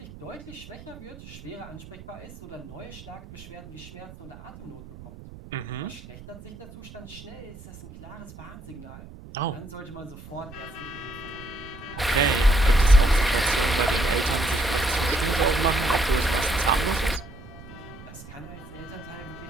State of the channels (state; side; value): noise; right; rumble, 16 dB below the sound